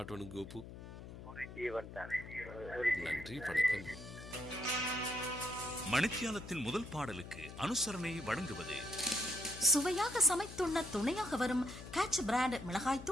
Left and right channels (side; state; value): left; noise; hum, 13 dB below the sound